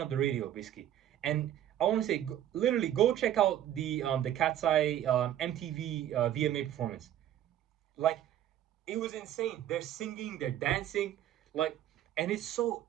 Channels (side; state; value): left; quieter; 11.7 dB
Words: up the radio basically. And I want to say, literally, go check out the KATSEYE MTV VMA performance. Like, it was insane. They're singing, they're dancing, like, and it's so.